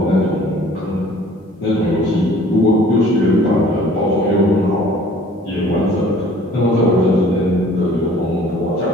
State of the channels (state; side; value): normal; both; correlation 0.52